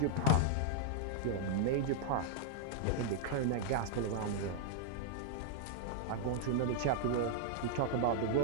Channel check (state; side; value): different; both; correlation -0.01